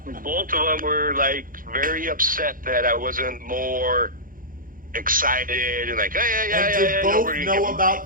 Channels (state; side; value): late; left; 0.40 ms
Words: of them were like very upset that I wasn't more excited and like, And did both know about